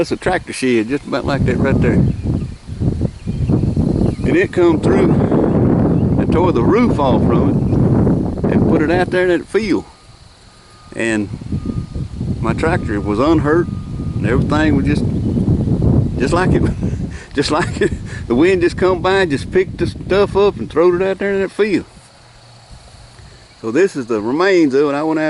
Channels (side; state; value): both; identical; correlation 1.00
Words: a tractor shed just about like that right there, and it come through and tore the roof off from it and put it out there in that field. And my tractor was unhurt and everything was just like it the wind just come by and just picked the stuff up and throwed it out there in that field. So this is the remains of it. I went